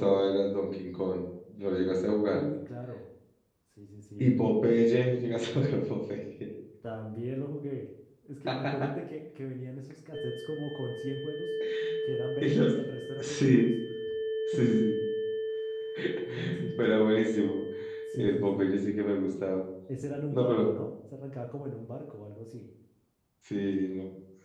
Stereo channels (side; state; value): both; identical; correlation 1.00